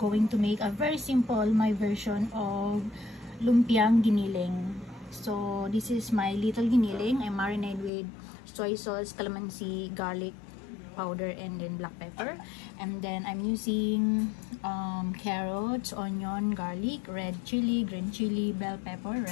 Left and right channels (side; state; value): right; drops out; at 7.9 s